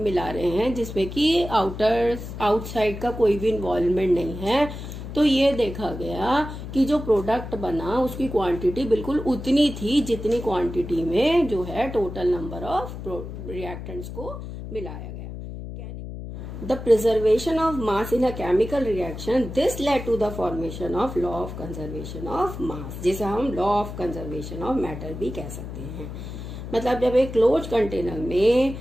मिला रहे हैं जिसमें कि आउटसाइड का कोई भी इन्वॉल्वमेंट नहीं है, तो ये देखा गया कि जो प्रोडक्ट बना उसकी क्वांटिटी बिल्कुल उतनी थी जितनी क्वांटिटी में जो है टोटल नंबर ऑफ रिएक्टेंट्स को मिलाया गया। The preservation of mass in a chemical reaction, this led to the formation of law of conservation of mass, जिसे हम law of conservation of matter भी कह सकते हैं। मतलब जब एक क्लोज कंटेनर में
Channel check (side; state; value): left; noise; hum, 9 dB below the sound